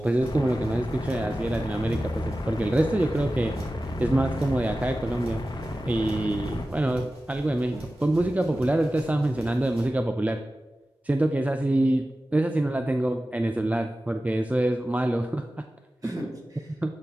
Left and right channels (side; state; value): both; normal; correlation 0.94